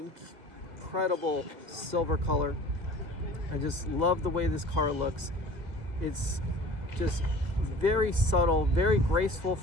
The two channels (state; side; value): late; left; 2.0 ms